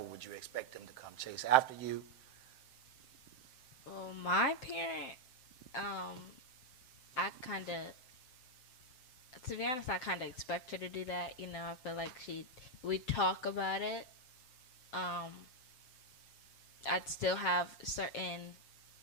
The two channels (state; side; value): late; right; 7.6 ms